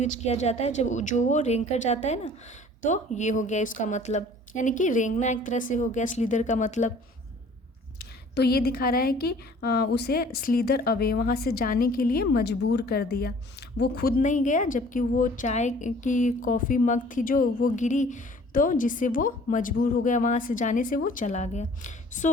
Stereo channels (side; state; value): both; normal; correlation 0.51